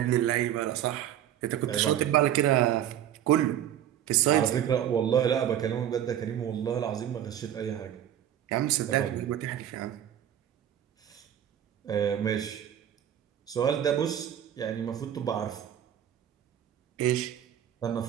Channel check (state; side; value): quieter; left; 10.7 dB